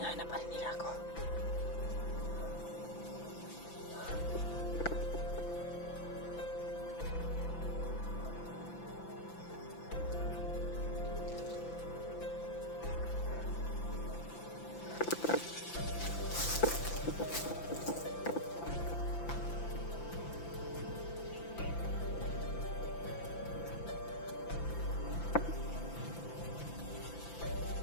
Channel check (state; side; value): late; right; 5.9 ms